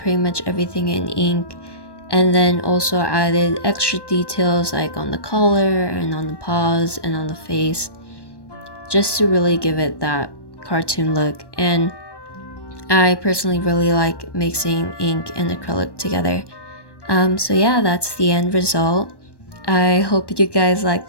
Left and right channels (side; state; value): right; late; 1.1 ms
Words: much everything in ink, and then also added extra details like on the collar and on the paws and on the face, just to really give it that cartoon look. And I personally really like mixing ink and acrylic together. So yeah, that's the end result. I hope you guys like